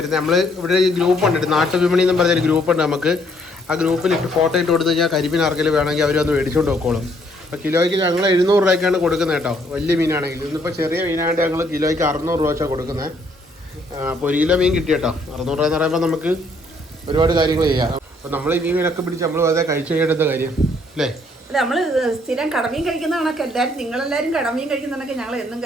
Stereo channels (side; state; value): both; normal; correlation 0.67